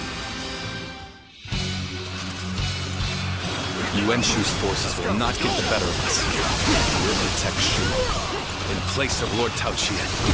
Yuan Shu's forces will not get the better of us. We'll protect Shu in place of Lord Tao Qian.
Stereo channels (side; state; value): both; identical; correlation 1.00